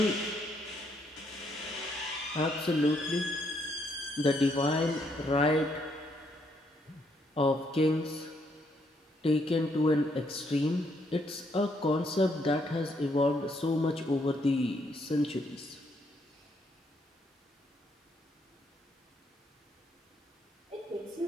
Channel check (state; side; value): normal; both; correlation 0.73